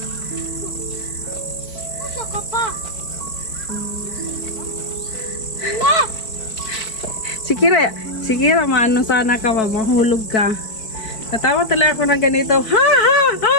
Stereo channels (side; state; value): right; late; 4.5 ms